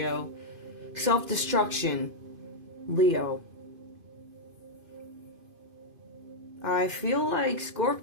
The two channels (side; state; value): left; late; 2.5 ms